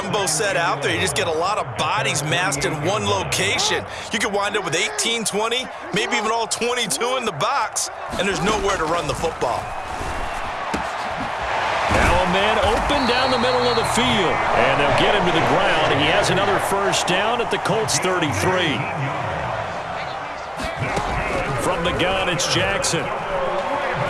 set out there. You just get a lot of bodies massed in one location. You could wind up with 18, 20, maybe even all 22 in the box, and there's nowhere to run the football. Now a man open down the middle of the field, and they'll get him to the ground. He has another first down at the Colts 33. From the gun, it's Jackson.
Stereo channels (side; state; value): both; identical; correlation 1.00